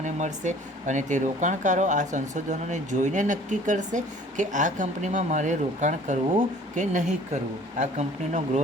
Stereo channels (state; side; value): normal; both; correlation 0.51